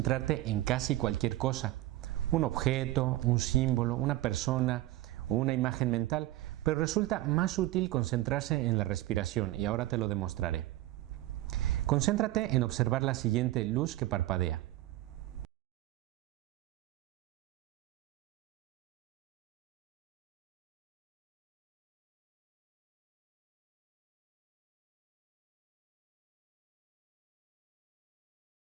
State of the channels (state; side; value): quieter; left; 16.0 dB